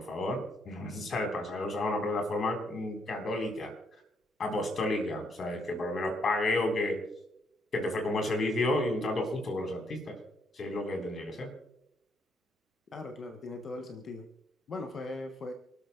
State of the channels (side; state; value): both; normal; correlation 0.73